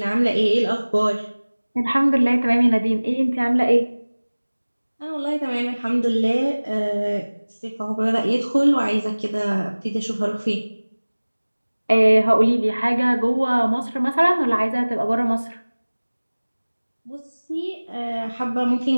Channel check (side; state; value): both; inverted; correlation -1.00